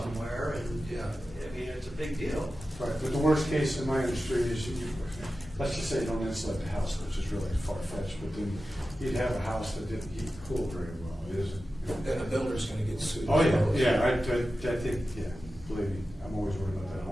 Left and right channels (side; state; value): both; normal; correlation 0.93